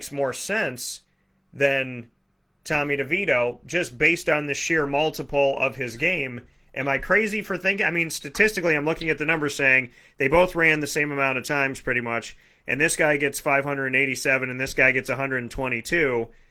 more sense than Tommy DeVito just based on the sheer multiple of his game. Am I crazy for thinking? I mean, statistically, I'm looking at the numbers saying they both ran the same amount of times pretty much, and this guy gets 587 and this guy gets 122.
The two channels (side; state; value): both; identical; correlation 1.00